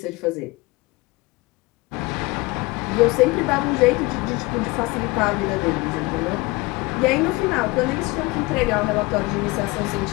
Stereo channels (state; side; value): quieter; right; 23.0 dB